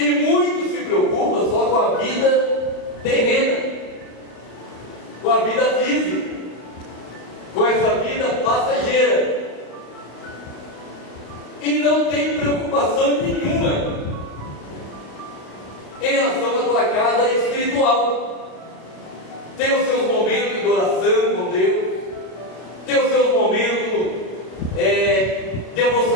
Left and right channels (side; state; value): right; late; 32 ms